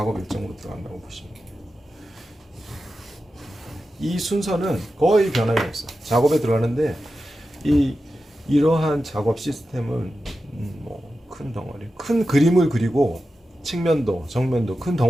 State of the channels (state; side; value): normal; both; correlation 0.91